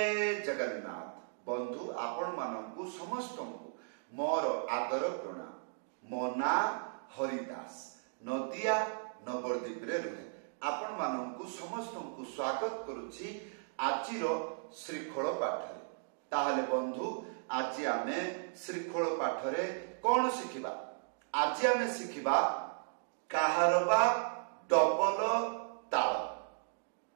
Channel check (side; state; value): left; silent; digital silence